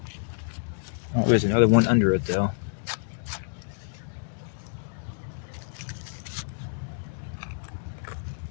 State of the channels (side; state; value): right; silent; digital silence